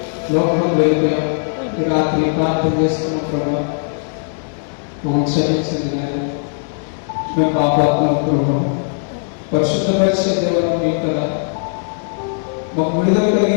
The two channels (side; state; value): right; silent; digital silence